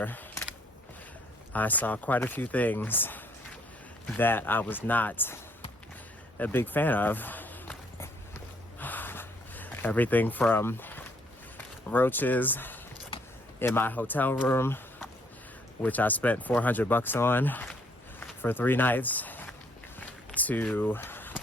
I saw quite a few things that I was not a big fan of. Everything from roaches in my hotel room, which I spent $400 on for 3 nights, to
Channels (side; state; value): both; normal; correlation 0.66